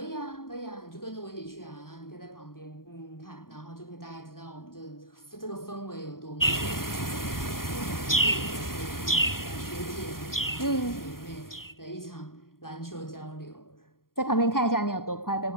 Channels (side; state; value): right; late; 0.91 ms